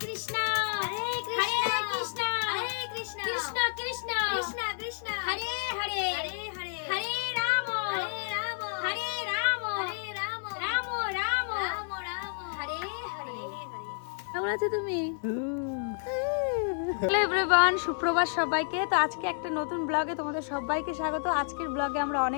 কৃষ্ণ হরে কৃষ্ণ হরে কৃষ্ণ কৃষ্ণ কৃষ্ণ কৃষ্ণ কৃষ্ণ হরে হরে হরে হরে হরে রাম হরে রাম হরে রাম হরে রাম রাম রাম রাম রাম হরে হরে হরে কেমন আছো তুমি? হ্যালো এভরিওয়ান, সুপ্রভাত সবাইকে। তো আজকে একটা নতুন ব্লগে তোমাদের সবাইকে স্বাগত। আজকের ব্লগে আমরা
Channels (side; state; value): right; silent; digital silence